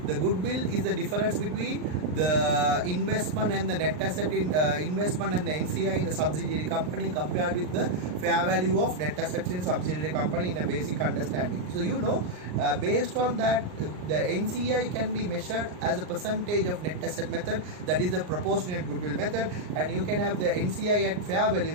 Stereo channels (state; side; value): late; left; 39 ms